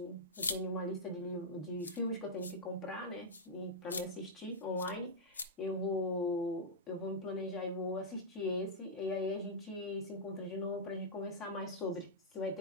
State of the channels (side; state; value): both; normal; correlation -0.08